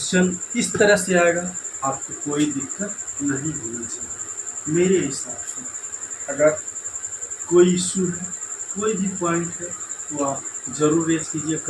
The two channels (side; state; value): both; identical; correlation 1.00